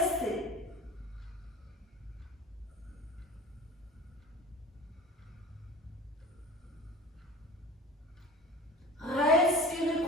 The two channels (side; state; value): both; normal; correlation 0.38